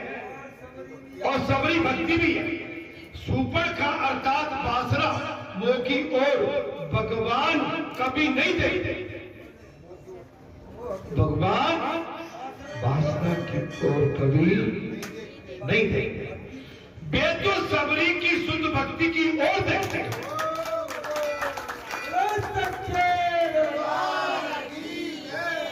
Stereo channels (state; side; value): identical; both; correlation 1.00